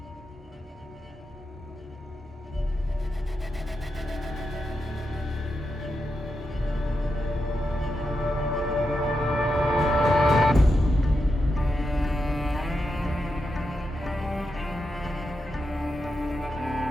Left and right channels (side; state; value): both; normal; correlation 0.86